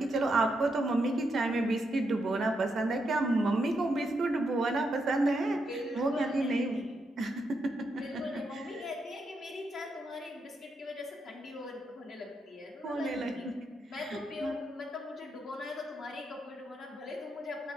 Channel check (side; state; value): both; normal; correlation 0.82